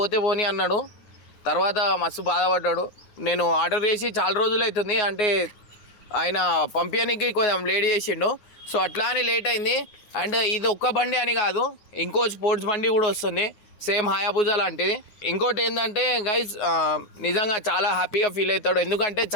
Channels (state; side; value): late; right; 9.5 ms